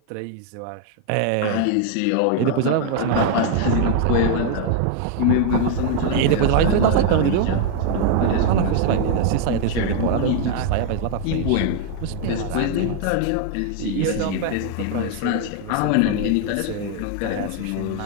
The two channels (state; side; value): different; both; correlation 0.00